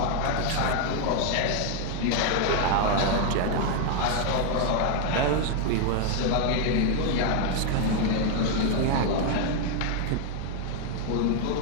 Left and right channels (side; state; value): both; different; correlation 0.01